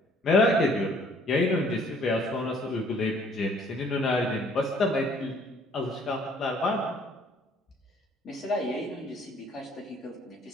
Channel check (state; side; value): normal; both; correlation 0.59